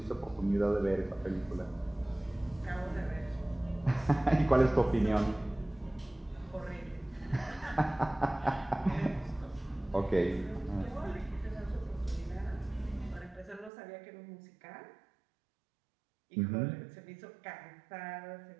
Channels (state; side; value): drops out; left; at 13.7 s